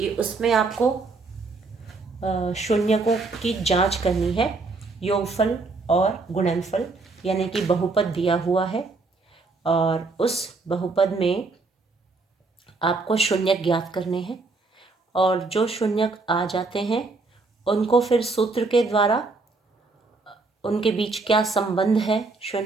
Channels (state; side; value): quieter; left; 3.7 dB